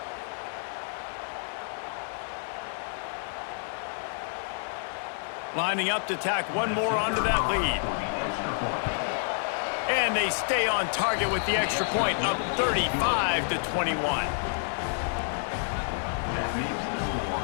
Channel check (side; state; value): right; silent; 59 dB below the other